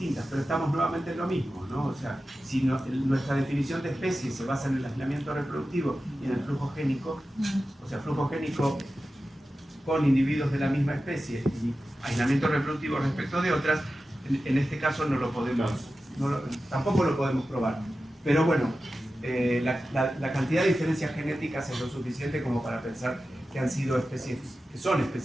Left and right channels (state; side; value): normal; both; correlation 0.93